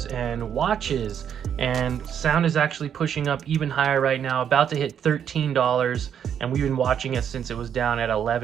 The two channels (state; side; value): quieter; left; 8.6 dB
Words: and watches. And sound is actually pushing up even higher right now, about to hit $13. And we've been watching it since it was down at